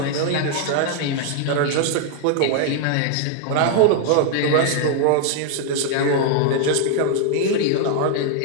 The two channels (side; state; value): both; different; correlation 0.00